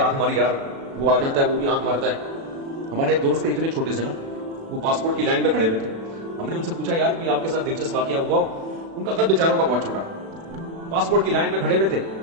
آنکھ ماری یار، وہ آ جاتا ہے، وہ بھی آنکھ مارتا ہے۔ ہمارے دوست تھے اتنے چھوٹے سے نا، وہ پاسپورٹ کی لائن میں کھڑے ہوئے تھے، ہم نے ان سے پوچھا یار کوئی آپ کے ساتھ دلچسپ واقعہ ہوا ہو؟ ان کا قد بیچاروں کا بہت چھوٹا، پاسپورٹ کی لائن میں کھڑے ہوئے تھے.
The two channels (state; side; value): late; left; 36 ms